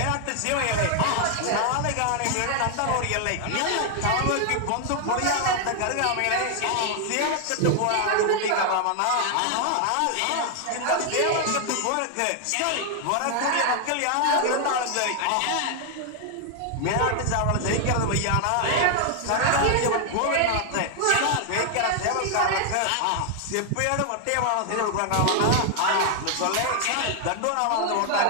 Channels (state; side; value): different; both; correlation 0.00